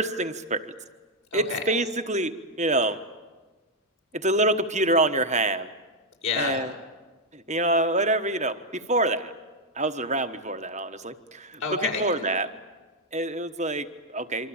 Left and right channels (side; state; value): both; normal; correlation 0.00